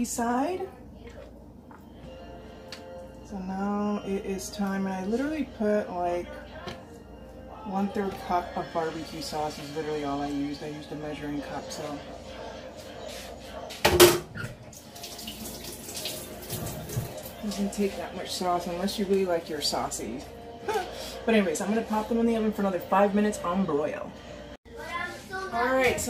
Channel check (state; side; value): identical; both; correlation 1.00